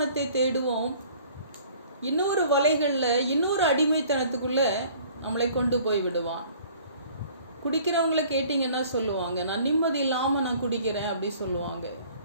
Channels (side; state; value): both; inverted; correlation -0.53